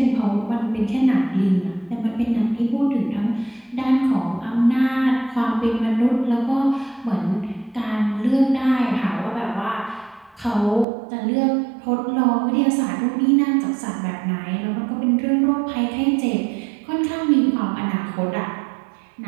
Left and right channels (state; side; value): drops out; left; at 10.9 s